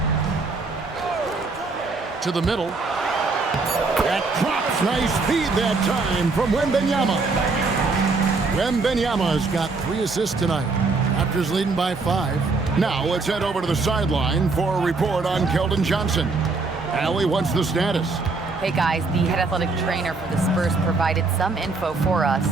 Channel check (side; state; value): left; quieter; 3.9 dB